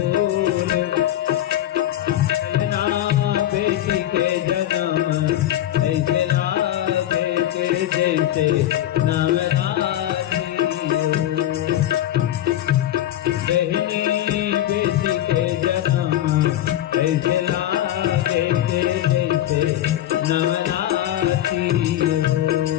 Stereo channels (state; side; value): quieter; right; 12.8 dB